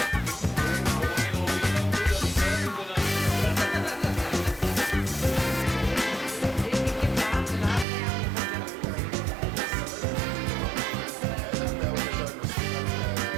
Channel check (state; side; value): drops out; left; at 7.9 s